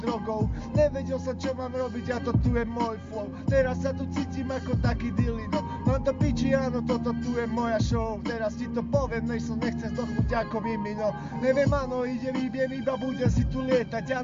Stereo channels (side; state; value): both; identical; correlation 1.00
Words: drogou. Nevedel som, čo mám robiť a to tu je môj flow. Teraz sa tu cítim ako taký dilino. Mám to piči, áno, toto tu je moja show. Teraz ti to poviem, než som nechcem zdochnúť ako mimino. Neviem, áno, idem, iba budem si tu lietať.